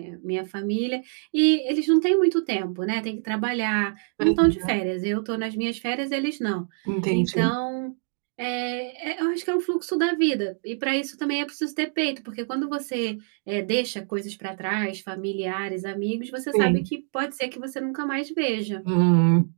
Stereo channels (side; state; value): left; silent; 61 dB below the other